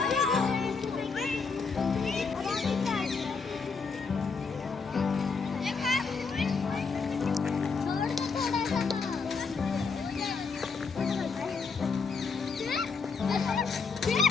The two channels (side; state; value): right; quieter; 4.9 dB